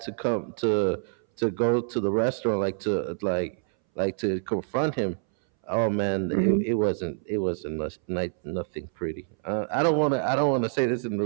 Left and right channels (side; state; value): left; silent; 60 dB below the other